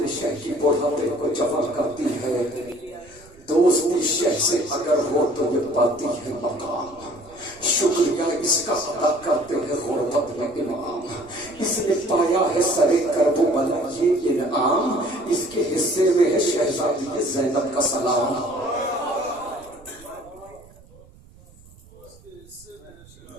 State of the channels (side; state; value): right; noise; rumble, 24 dB below the sound